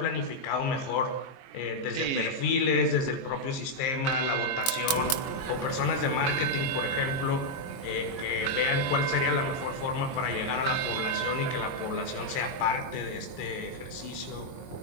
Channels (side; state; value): right; late; 22 ms